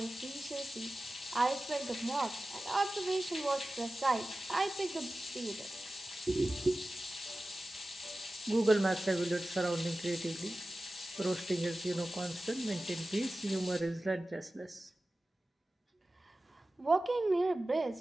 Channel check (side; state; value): both; normal; correlation 0.96